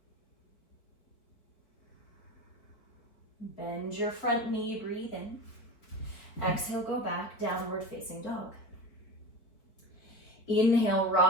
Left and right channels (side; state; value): right; late; 4.7 ms